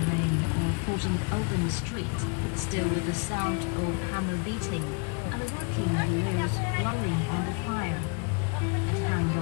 main or 14th open street, still with the sound of hammer beating and the working wheels blowing on the fire. At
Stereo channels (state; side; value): quieter; right; 35.1 dB